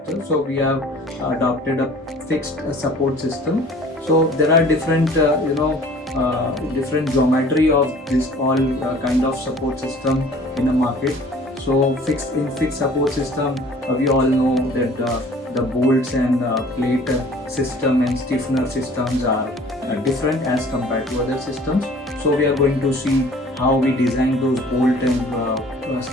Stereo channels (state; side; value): normal; both; correlation 0.50